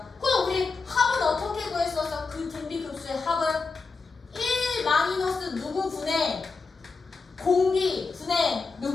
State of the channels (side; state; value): right; quieter; 4.4 dB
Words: 그럼 우리 합은 어떻게 구했었어? 그 등비급수의 합은 1 마이너스 누구 분의 공비 분의